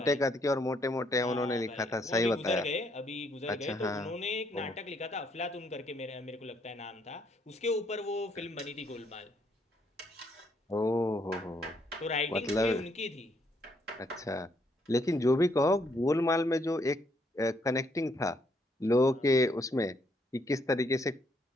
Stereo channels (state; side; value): normal; both; correlation 0.71